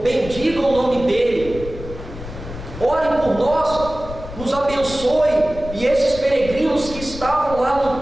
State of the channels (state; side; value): noise; left; rumble, 12 dB below the sound